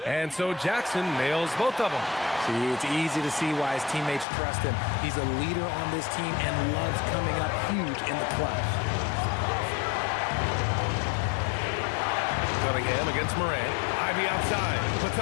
And so Jackson nails both of them. See, it's easy to see why his teammates trust him. He's a leader on this team and loves coming up huge in the clutch. Cunningham against Morant. Ivy outside.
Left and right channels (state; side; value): drops out; right; at 4.2 s